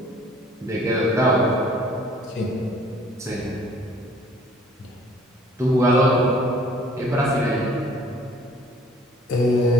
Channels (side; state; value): both; normal; correlation 0.55